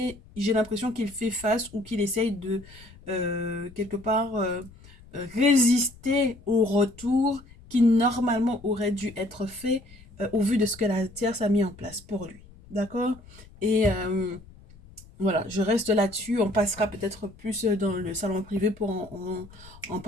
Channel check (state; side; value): noise; left; rumble, 22 dB below the sound